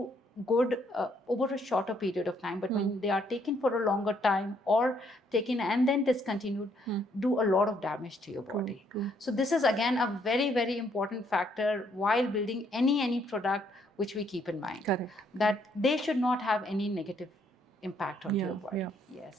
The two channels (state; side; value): normal; both; correlation 0.70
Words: good over a shorter period of time, but when they are taken for a longer time or taken and then discontinued, do a lot of damage to your body. So this is again a very, very important factor while building any product which we keep in mind. Correct. That they should not have any negative impact on your body.